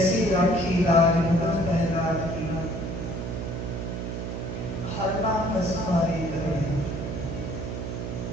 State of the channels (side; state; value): right; noise; hum, 4 dB below the sound